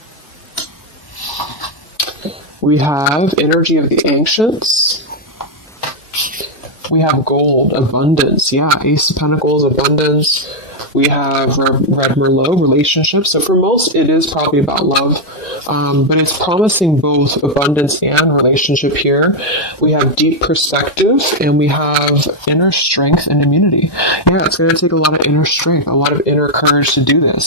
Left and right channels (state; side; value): late; right; 1.1 ms